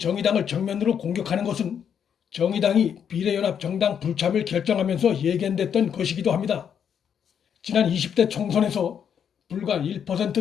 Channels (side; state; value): right; quieter; 8.1 dB